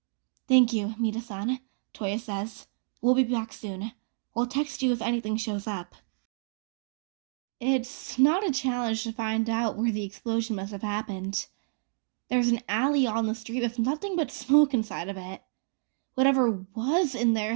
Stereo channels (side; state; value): left; silent; digital silence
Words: Thank you, Mida-san, Touya says. We'll be back soon. We'll text you if anything shows up. It's not a challenge to find out where the explosion must have happened. There's an alley on the street with nothing but smoke inside of it. Whatever was in there